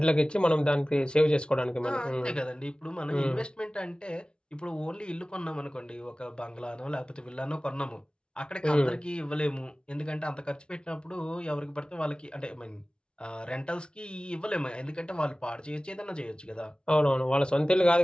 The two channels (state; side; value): late; right; 0.055 ms